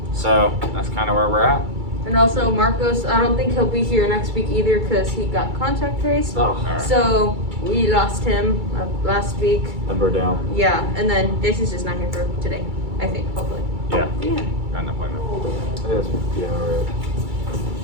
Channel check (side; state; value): left; late; 2.3 ms